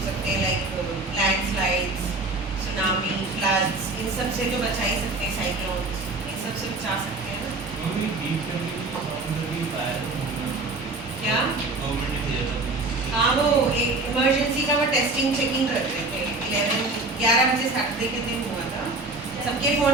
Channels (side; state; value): left; quieter; 3.1 dB